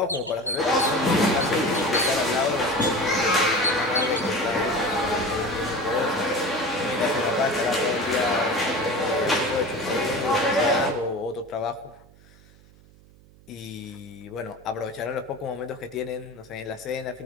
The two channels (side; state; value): right; noise; hum, 26 dB below the sound